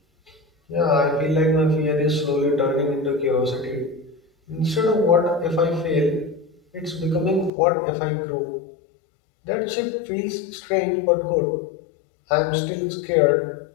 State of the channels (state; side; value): drops out; right; at 7.5 s